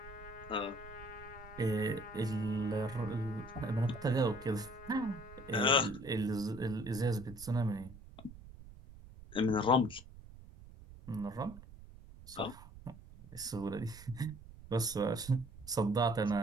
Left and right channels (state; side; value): noise; right; rumble, 17 dB below the sound